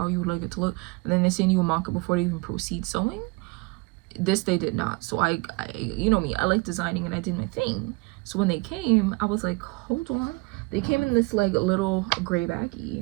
you would like it to look, and then they send you a mock-up before they even proceed sewing. This they did not. So I you know me, I like designing, and I did my thing. So when they came, I was like, hold on. They came in this like little gray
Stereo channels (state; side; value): quieter; left; 26.0 dB